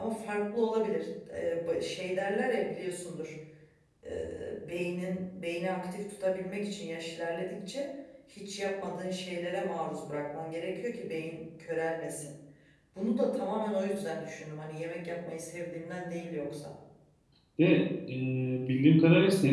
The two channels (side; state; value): both; identical; correlation 1.00